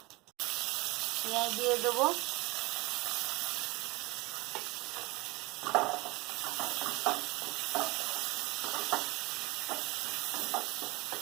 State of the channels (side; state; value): left; quieter; 23.1 dB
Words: পেঁয়াজ দিয়ে দেবো।